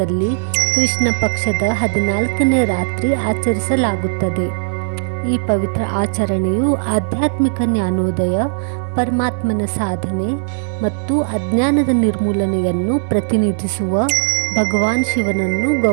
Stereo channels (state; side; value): silent; left; digital silence